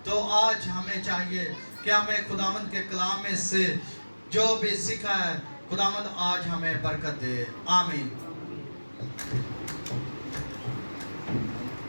तो आज हमें चाहिए कि हमें खुदावंद के कलाम में से जो भी सीखा है, खुदावंद आज हमें बरकत दे। आमीन।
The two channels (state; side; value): inverted; both; correlation -1.00